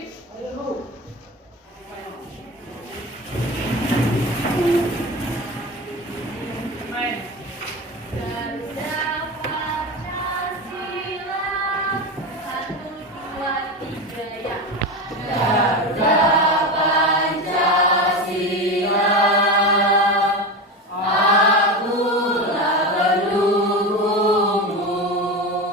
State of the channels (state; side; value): normal; both; correlation 0.22